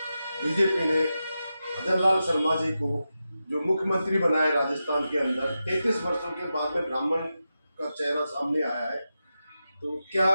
बीजेपी ने भजन लाल शर्मा जी को जो मुख्यमंत्री बनाया राजस्थान के अंदर, 33 वर्षों के बाद में ब्राह्मण का चेहरा सामने आया है, तो क्या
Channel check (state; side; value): inverted; both; correlation -0.90